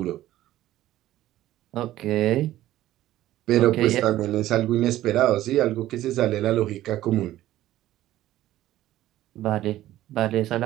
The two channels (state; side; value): quieter; left; 14.4 dB